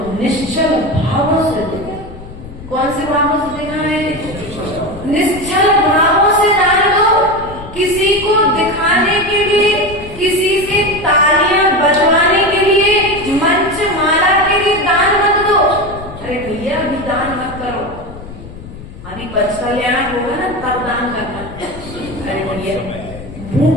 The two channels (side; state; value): left; noise; rumble, 14 dB below the sound